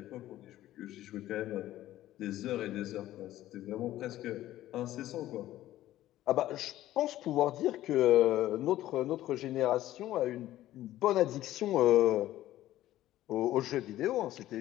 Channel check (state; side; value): quieter; right; 14.3 dB